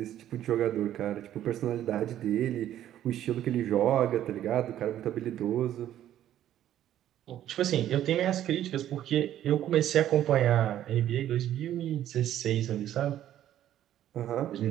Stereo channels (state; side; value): quieter; left; 11.8 dB